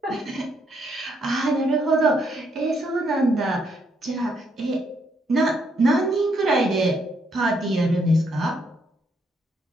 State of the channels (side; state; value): both; normal; correlation 0.74